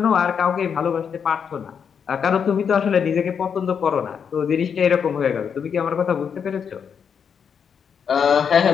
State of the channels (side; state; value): right; quieter; 7.1 dB